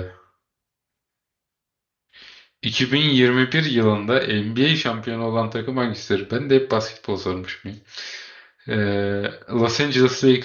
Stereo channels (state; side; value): identical; both; correlation 1.00